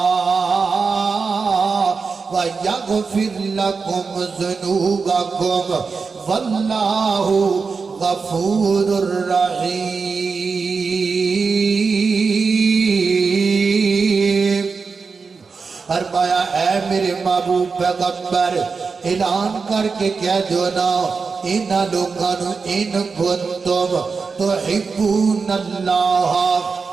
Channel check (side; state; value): left; quieter; 4.9 dB